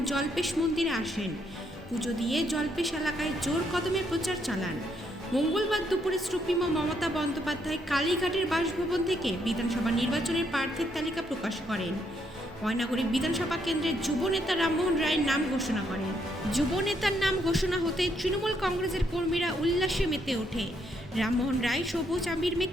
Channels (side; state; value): both; normal; correlation 0.74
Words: জল্পেশ মন্দিরে আসেন। পুজো দিয়ে জল্পেশ এলাকায় জোর কদমে প্রচার চালান। মঙ্গলবার দুপুরে সুপ্রিমো মমতা বন্দ্যোপাধ্যায় কালীঘাটের বাসভবন থেকে বিধানসভা নির্বাচনের প্রার্থীর তালিকা প্রকাশ করেন। ময়নাগুড়ি বিধানসভা কেন্দ্রের যুব নেতা রামমোহন রায়ের নাম ঘোষণা করেন। যুব নেতার নাম ঘোষণা হতে তৃণমূল কংগ্রেসের কর্মীরা উল্লাসে মেতে ওঠে। রামমোহন রায় সবুজ আবির